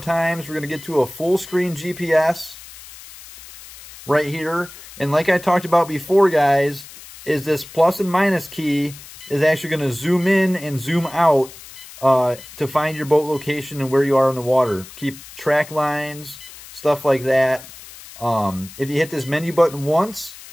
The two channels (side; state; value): left; noise; hiss, 17 dB below the sound